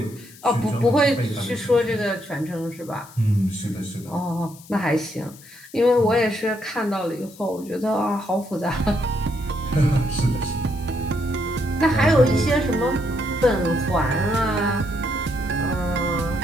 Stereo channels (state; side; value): noise; left; hiss, 21 dB below the sound